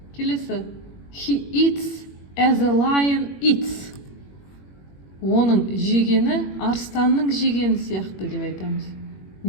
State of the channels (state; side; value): late; right; 21 ms